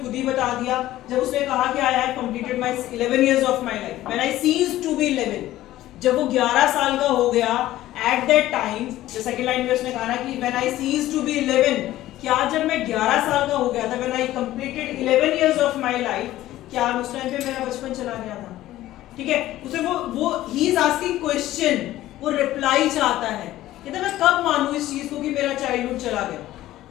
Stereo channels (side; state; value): right; quieter; 14.9 dB